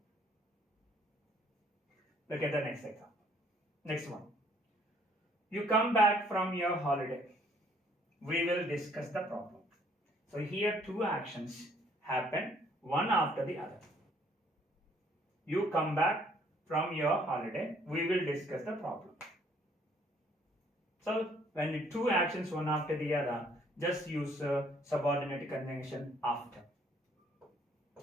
Look at the next example. Next one. You come back from your holiday. We will discuss the problem. So here two actions happen, one after the other. You come back from your holiday. We will discuss the problem. So when the two actions one after the other, just use subordinate conjunction after.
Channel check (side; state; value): both; normal; correlation 0.62